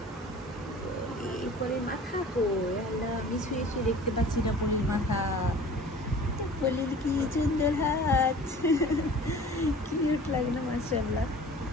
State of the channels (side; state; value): both; normal; correlation 0.45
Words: পলি, পলির মাথা কই? আল্লাহ, আমি শুয়ে শুয়ে দেখতে পাচ্ছি না পলির মাথা। পলির কি সুন্দর হাত, কিউট লাগে না মাশাআল্লাহ।